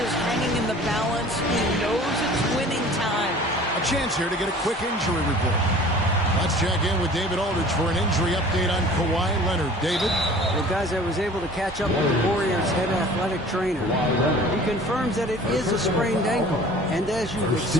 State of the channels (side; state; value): both; normal; correlation 0.46